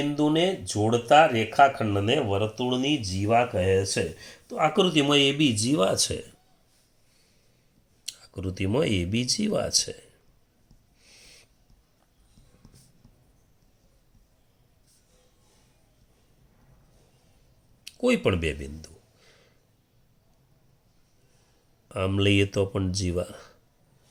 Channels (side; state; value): both; identical; correlation 1.00